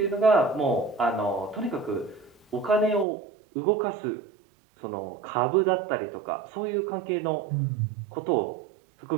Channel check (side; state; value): left; drops out; at 3.1 s